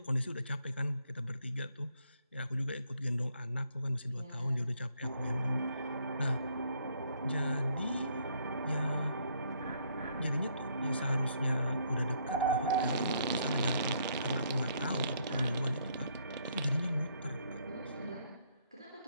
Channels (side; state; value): both; inverted; correlation -0.69